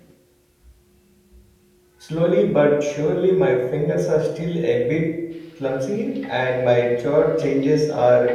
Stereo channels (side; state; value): both; identical; correlation 1.00